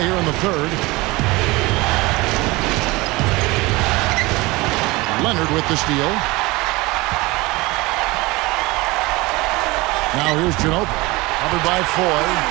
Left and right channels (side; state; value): left; quieter; 22.4 dB